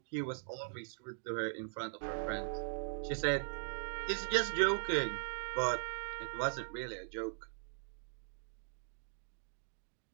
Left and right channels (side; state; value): left; silent; digital silence